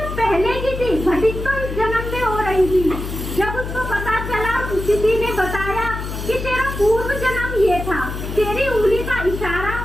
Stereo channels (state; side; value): noise; left; hum, 6 dB below the sound